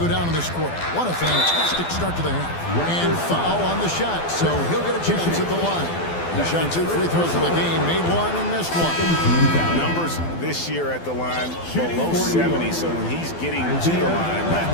down in this quarter. What a fantastic start to the half. And foul on the shot, so he'll get a chance at the line. He shot 2 free throws in the game, made 1 and missed 1. Numbers this year at the line below 70, so when he's getting to the line,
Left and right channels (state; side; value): late; right; 12 ms